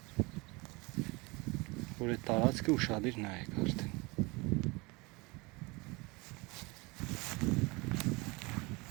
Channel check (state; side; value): quieter; left; 25.9 dB